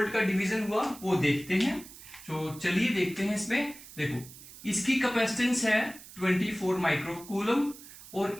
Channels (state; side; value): noise; right; hiss, 17 dB below the sound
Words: का डिवीजन हुआ वो देखते हैं। तो चलिए देखते हैं। इसमें देखो इसकी कैपेसिटेंस है 24 माइक्रोकूलम, और